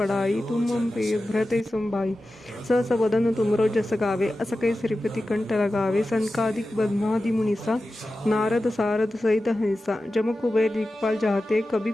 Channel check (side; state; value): both; normal; correlation 0.94